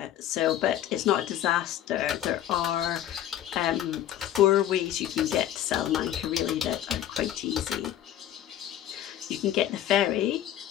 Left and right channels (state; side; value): quieter; right; 11.7 dB